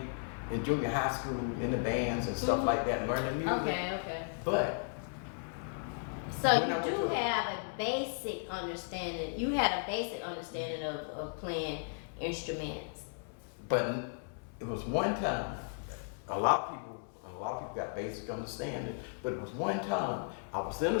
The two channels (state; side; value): silent; right; 54 dB below the other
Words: in junior high school in the bands and stuff like that, learning music. Okay. But So when I you went do to- have a basic understanding. You had a basic understanding of playing instruments. But it was one time, a lot of people got basic understanding, but it was one time I was in